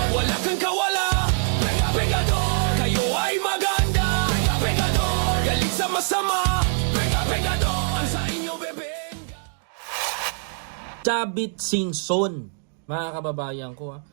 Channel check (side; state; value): left; silent; digital silence